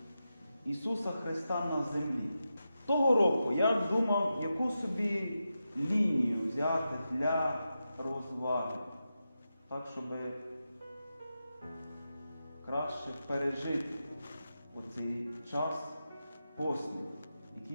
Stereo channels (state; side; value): inverted; both; correlation -0.89